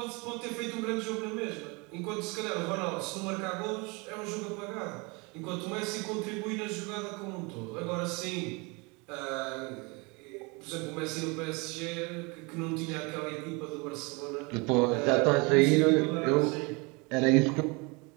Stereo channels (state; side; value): quieter; left; 28.4 dB